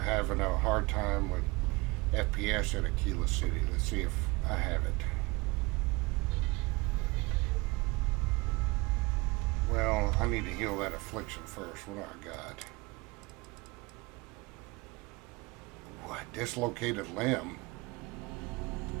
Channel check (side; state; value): left; quieter; 24.5 dB